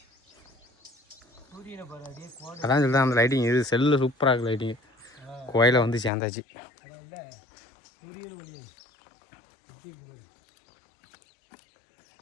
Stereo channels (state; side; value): drops out; right; at 6.1 s